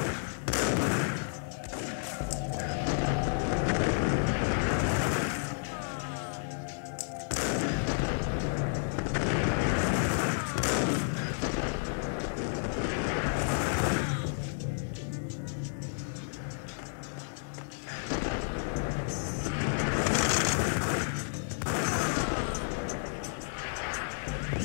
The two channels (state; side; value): silent; right; digital silence